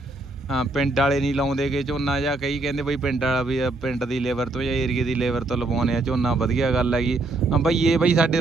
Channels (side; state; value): left; quieter; 3.1 dB